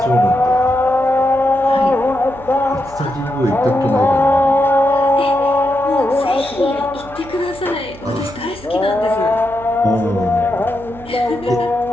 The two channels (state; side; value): noise; right; hum, 19 dB below the sound